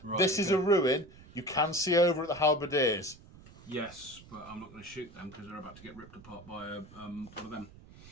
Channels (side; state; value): right; noise; rumble, 21 dB below the sound